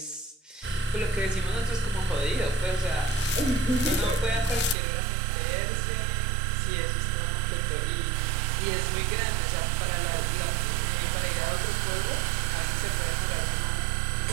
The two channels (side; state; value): left; drops out; at 4.8 s